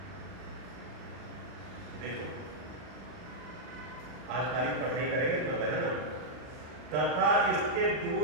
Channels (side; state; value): left; late; 40 ms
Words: देखो आज खाली पढ़ाई करेंगे मतलब है ना, तथा इसके